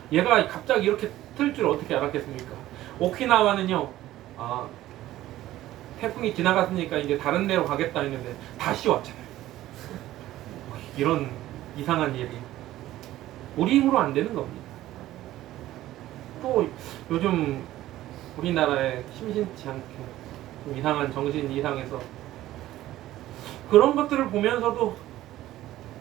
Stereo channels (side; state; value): left; quieter; 14.8 dB